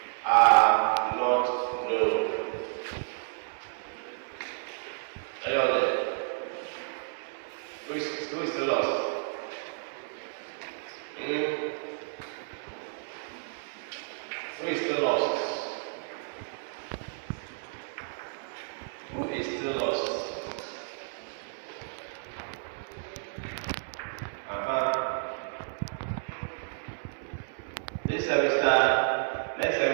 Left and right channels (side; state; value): left; silent; digital silence